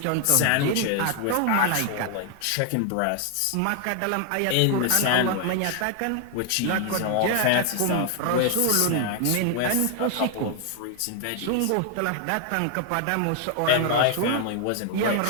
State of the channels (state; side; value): different; both; correlation 0.00